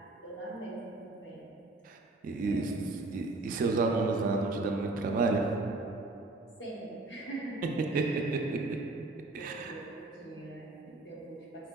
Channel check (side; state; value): left; quieter; 3.0 dB